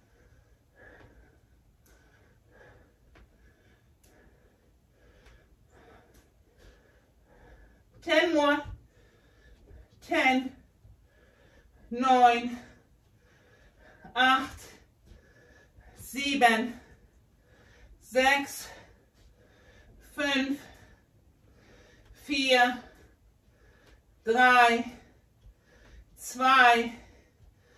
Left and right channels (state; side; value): identical; both; correlation 1.00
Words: Ten more. 10, 9, 8, 7, 6, 5, 4, 3, 2, 1.